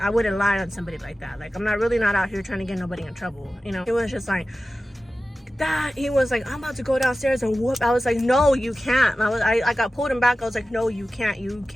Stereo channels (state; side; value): normal; both; correlation 0.95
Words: lie on somebody like that. Like, I'm not really not out here trying to get nobody in trouble, you know? It was just like that. He was like, I'm about to go downstairs and whoop. I was like, no, you can't. I got pulled him back. I was like, no, you